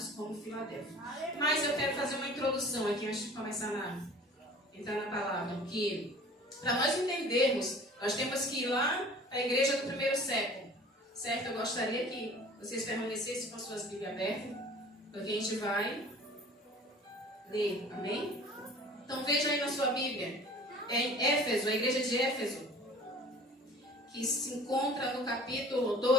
como Filadélfia. Mas eu quero fazer uma introdução aqui antes de começar a entrar na palavra, que para nós entendermos, nós temos que ir lá à igreja do primeiro século, certo? Eu gostaria que vocês permanecessem com suas Bíblias abertas, porque a gente vai ler, amém? Então veja aí na sua Bíblia, em Éfeso, a igreja de Éfeso, que se encontra no capítulo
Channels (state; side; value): normal; both; correlation 0.46